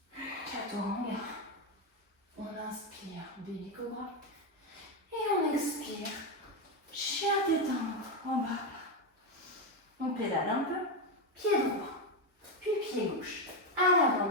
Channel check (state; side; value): normal; both; correlation 0.09